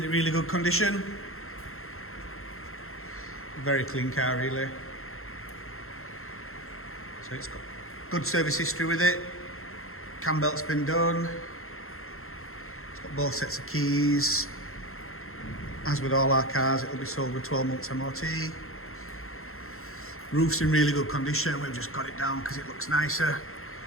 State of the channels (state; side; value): late; right; 0.62 ms